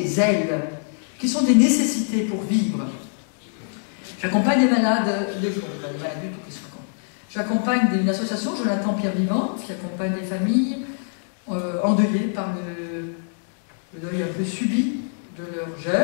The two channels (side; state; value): right; silent; digital silence